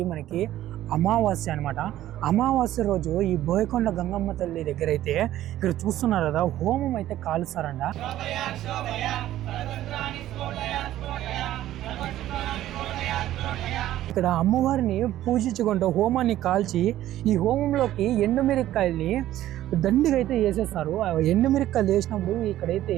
మనకి అమావాస్య అనమాట. అమావాస్య రోజు ఈ బోయకొండ గంగమ్మ తల్లి దగ్గర అయితే ఇక్కడ చూస్తున్నారు కదా, హోమం అయితే కాలుస్తారంట. ఇక్కడ అమ్మవారిని పూజించుకుంటూ హోమాన్ని కాల్చి ఈ హోమంలోకి ఎండుమిరక్కాయల్ని దండిగా అయితే వేసేస్తారు. ఎండుమిరక్కాయలు వేసినప్పుడు ఇక్కడైతే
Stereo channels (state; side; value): quieter; left; 13.6 dB